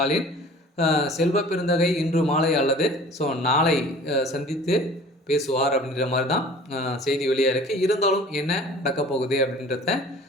செல்வ பெருந்தகை இன்று மாலை அல்லது நாளை சந்தித்து பேசுவார் அப்படின்ற மாதிரி தான் செய்தி வெளியாக இருக்குது. இருந்தாலும் என்ன நடக்க போகுது அப்படின்றத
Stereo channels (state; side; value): normal; both; correlation 0.46